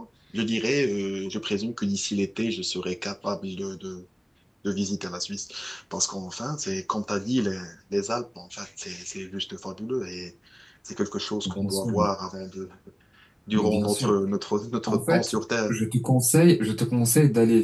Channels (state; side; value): identical; both; correlation 1.00